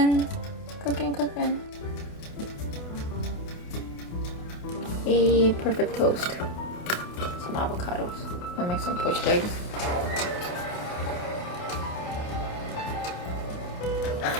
A perfect toast. Some avocados. I'll make some poached eggs.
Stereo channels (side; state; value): right; late; 28 ms